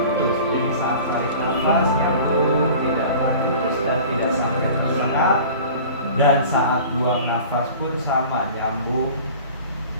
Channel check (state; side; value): inverted; both; correlation -0.42